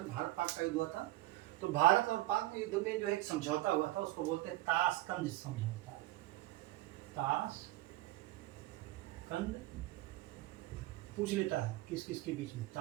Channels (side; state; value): left; quieter; 17.3 dB